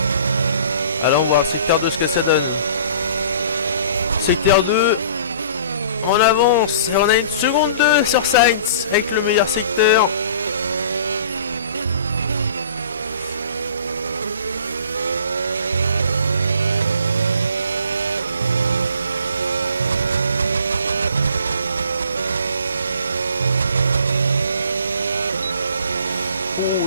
Alors on va voir le secteur 2 ce que ça donne. Secteur 2. On avance et on a une seconde 2 sur Sainz avec le meilleur secteur. Oh,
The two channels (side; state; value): both; inverted; correlation -0.49